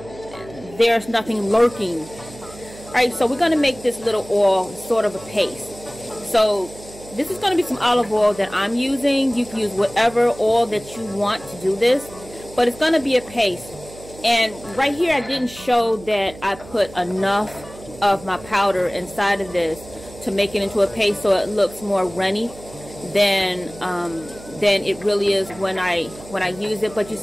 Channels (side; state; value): right; noise; hum, 18 dB below the sound